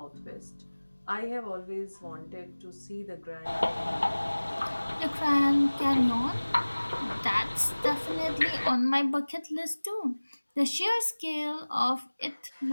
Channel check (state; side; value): inverted; both; correlation -1.00